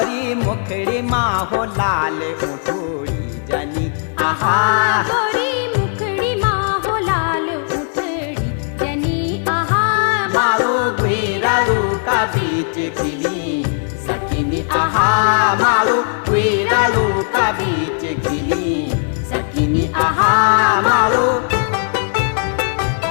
मुखड़ी माँ हो लाल उठोड़ी जनी आहा गोरी मुखड़ी माँ हो लाल उठड़ी जनी आहा मारो गुरारू का बीच खिली सकिनी आहा मारो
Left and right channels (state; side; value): silent; right; 61 dB below the other